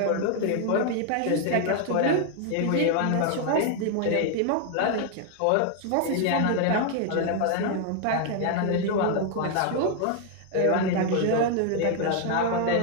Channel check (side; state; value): both; different; correlation 0.00